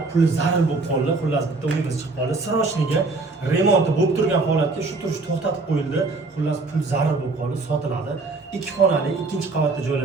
pul zarur bo'lib qoldi. Xullas bitta uyimiz chiqib qoldi. Srochniga remonti bo'lib turgan holatga shu turish to'xtatib qo'yildi. Xullas pul zarur bo'lib qoldi, sotiladi. 2 xonali, 2-qavatda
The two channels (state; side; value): quieter; left; 3.6 dB